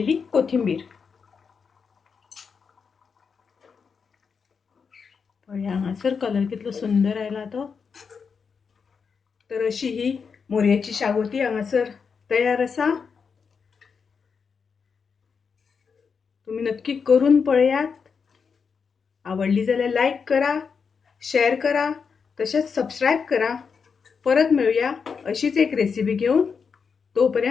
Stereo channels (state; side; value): quieter; right; 5.8 dB